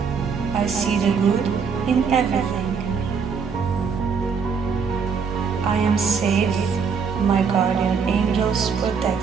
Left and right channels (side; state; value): left; quieter; 5.9 dB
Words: I see the good in everything. I am safe. My guardian angels